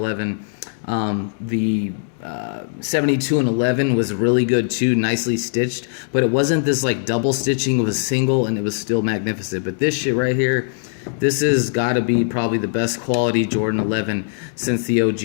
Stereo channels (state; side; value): silent; right; digital silence